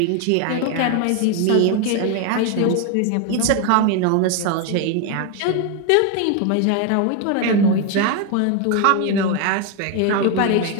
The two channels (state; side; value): different; both; correlation 0.01